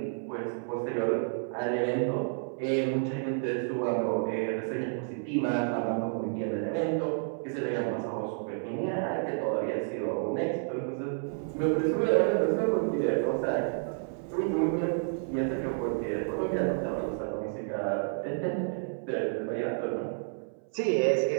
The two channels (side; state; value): left; silent; 58 dB below the other